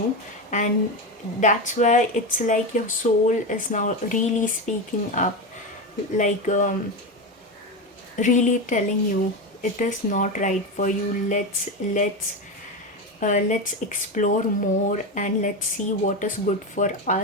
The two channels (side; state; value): both; normal; correlation 0.16